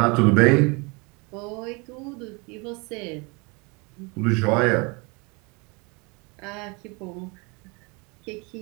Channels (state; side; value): quieter; left; 28.8 dB